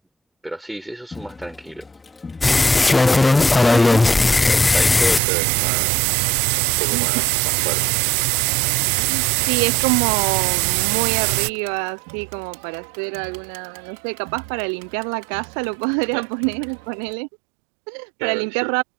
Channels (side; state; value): left; drops out; at 5.2 s